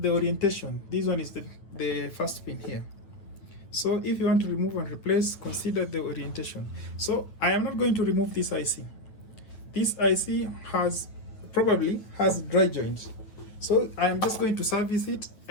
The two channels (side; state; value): right; late; 9.3 ms